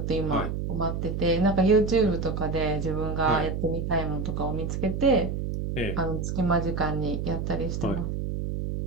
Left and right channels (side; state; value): right; noise; hum, 3 dB below the sound